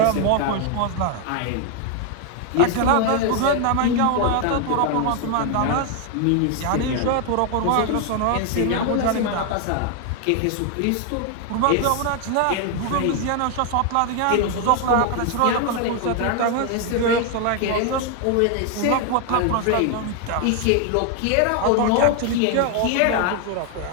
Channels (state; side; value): different; both; correlation 0.00